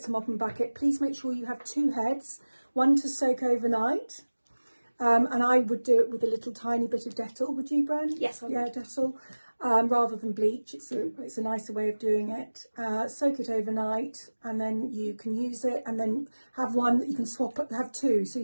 a mop and bucket. Please make sure you have 2 heads, one to soak overnight. And I would do it with a little tiny bit of Dettol. Would you, Bren? Yes, I would. Yeah, Dettol. Rather than bleach. It's a nicer way of doing it. Soak it overnight, and then you can use it, and then have one that you can swap, have 2, so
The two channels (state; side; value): inverted; both; correlation -1.00